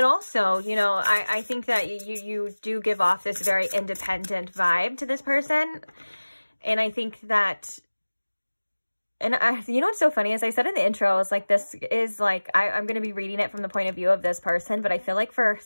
also, you know, I think that you do give off this very independent vibe to this person. And I think that, and you know what's so funny? As I said in the intro, I was like, this is like, I'm going to be reading it from the point of view of this person. But I feel like for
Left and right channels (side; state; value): both; inverted; correlation -1.00